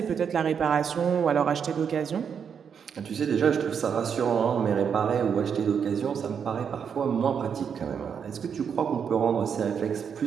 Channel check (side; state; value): left; quieter; 7.2 dB